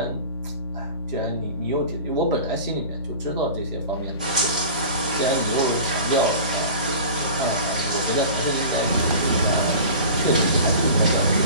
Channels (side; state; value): both; inverted; correlation -0.38